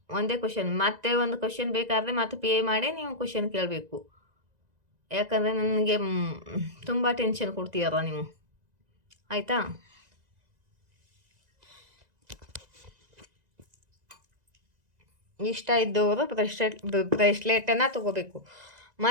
ಒಂದೇ ಕ್ವಶನ್, ಮತ್ತೆ ಒಂದು ಕ್ವಶನ್ ಬೇಕಾದರೆ ಮತ್ತೆ ಪೇ ಮಾಡಿ ನೀವು ಕ್ವಶನ್ ಕೇಳಬೇಕು. ಯಾಕಂದರೆ ನನಗೆ ತುಂಬ ಟೆನ್ಷನ್ ಕೊಡ್ತೀರ ನೀವು, ಆಯಿತಾ? ಇಷ್ಟ ಇದ್ದವರು ಬ್ರೇಸ್ಲೆಟನ್ನು ತಗೋಬೇಕು.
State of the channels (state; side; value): late; left; 1.9 ms